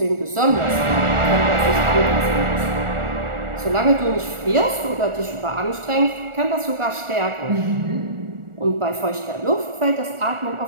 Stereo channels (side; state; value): left; late; 1.4 ms